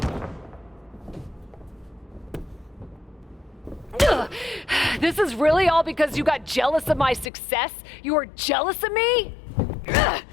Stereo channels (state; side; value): drops out; right; at 7.3 s